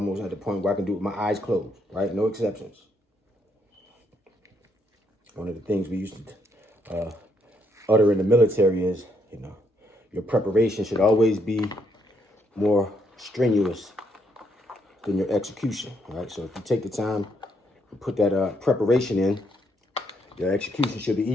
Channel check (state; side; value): normal; both; correlation 0.74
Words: at the point where I can do it with my eyes closed, right? No exceptions. One of the things we used to utter in the military is, you know, your preparation should always be more strenuous than your execution, right? So if you take the time and put that preparation in, your execution should be